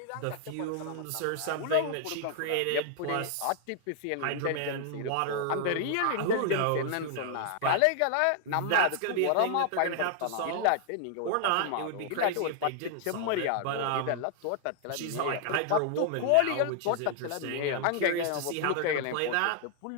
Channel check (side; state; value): both; different; correlation 0.00